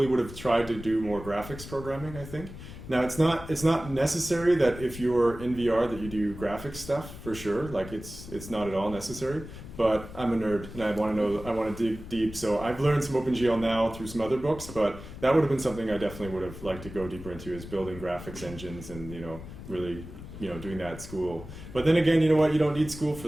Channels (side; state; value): left; noise; rumble, 13 dB below the sound